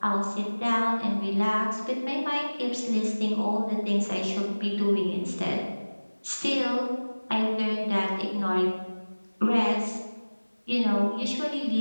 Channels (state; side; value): inverted; both; correlation -1.00